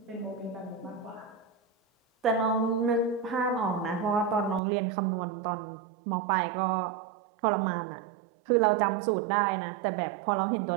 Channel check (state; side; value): drops out; left; at 4.6 s